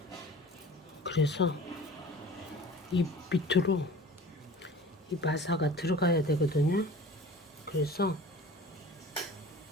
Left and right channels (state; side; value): normal; both; correlation 0.42